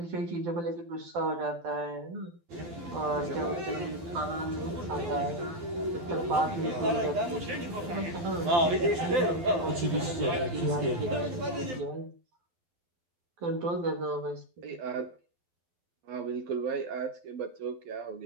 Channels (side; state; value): left; late; 12 ms